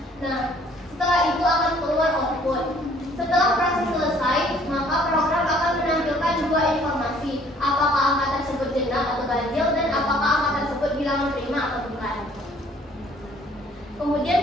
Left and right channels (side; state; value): both; normal; correlation 0.59